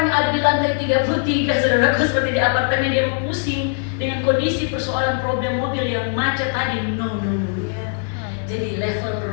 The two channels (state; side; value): silent; right; 65 dB below the other